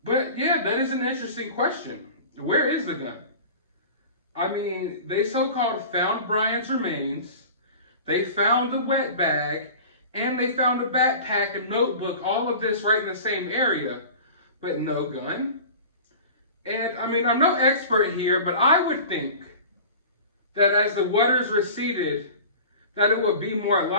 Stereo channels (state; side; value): inverted; both; correlation -0.38